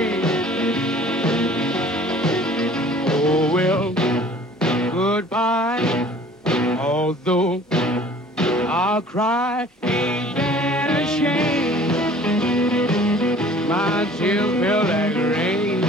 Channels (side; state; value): both; normal; correlation 0.50